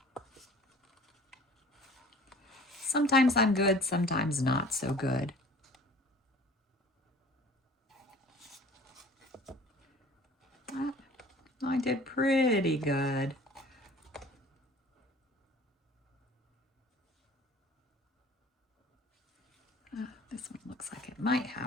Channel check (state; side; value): normal; both; correlation 0.47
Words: Sometimes I'm good, sometimes not so good. I did pretty good. This one looks like it might